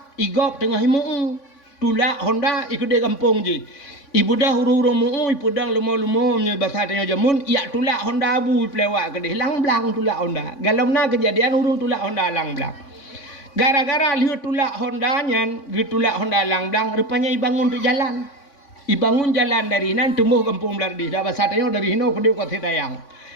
igop tengah himu tulak Honda ikut de kampung je ibu dah huru-huru mu ibu dah lumo-lumo nya bahasa tanya jamun ya tulak Honda Abu pelewak ke lang blang tulak Honda galomna kejadian urung tulak Honda lang blang gara-gara lihat tulak Honda nyan tulak Honda lang blang rupanya ibangun tu jalan dari nan tumbuh kampung belardi dah bahasa tanya dari hino ke dia kota tayang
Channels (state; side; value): late; right; 3.5 ms